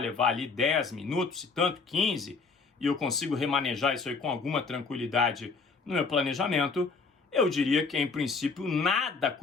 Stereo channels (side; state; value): right; quieter; 4.6 dB